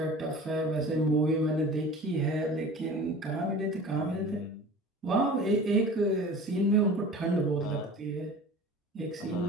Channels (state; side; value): normal; both; correlation 0.40